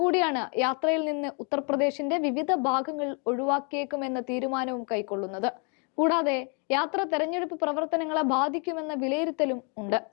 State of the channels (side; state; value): right; quieter; 36.6 dB